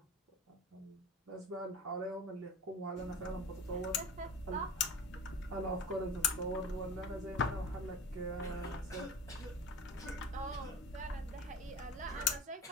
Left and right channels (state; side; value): normal; both; correlation 0.34